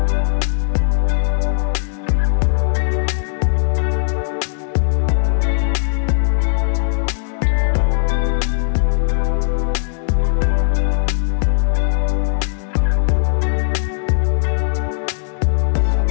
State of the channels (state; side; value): silent; right; digital silence